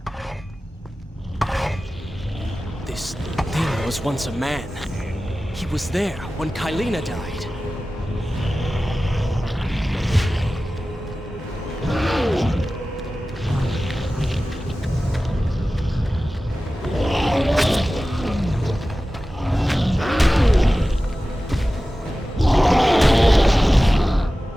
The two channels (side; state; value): both; normal; correlation 0.95